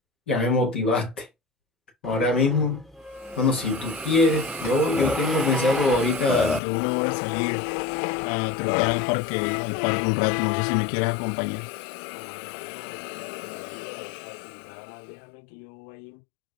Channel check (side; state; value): right; drops out; at 6.6 s